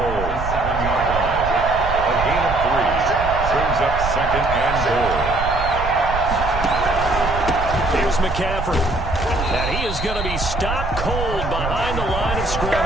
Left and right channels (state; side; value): noise; right; rumble, 6 dB below the sound